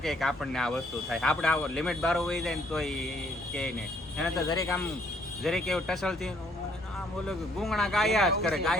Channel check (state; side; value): normal; both; correlation 0.64